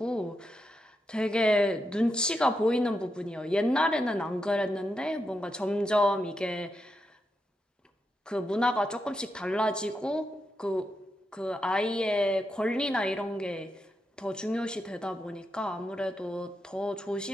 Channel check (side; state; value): both; normal; correlation 0.85